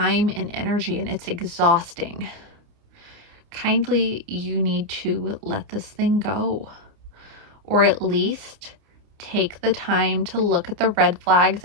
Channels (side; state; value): left; late; 29 ms